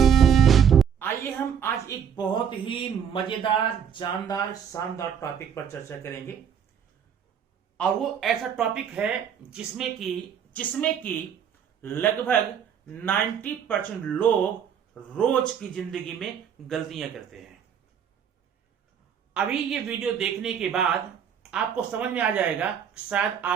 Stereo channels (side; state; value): left; quieter; 8.0 dB